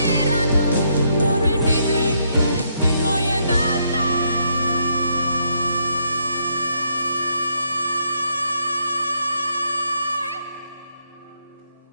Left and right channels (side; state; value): both; inverted; correlation -0.74